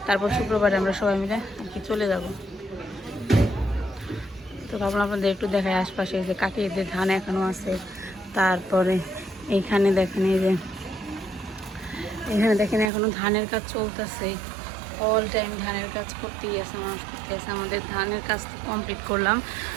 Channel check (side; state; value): left; drops out; at 12.9 s